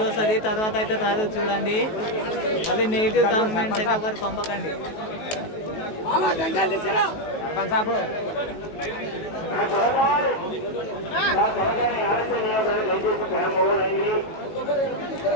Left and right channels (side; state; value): right; late; 19 ms